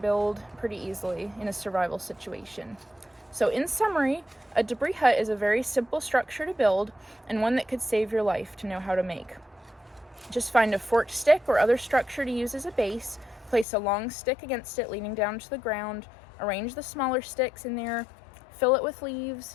pretty easily in a survival situation. So in summary, a debris hut is a very simple structure to build and one that could save your life to know how to make. Just find a forked stick or other structure to use as a base, place a long stick against it leaning down to the ground, arrange the smaller sticks in there, fill it with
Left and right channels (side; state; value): right; drops out; at 13.7 s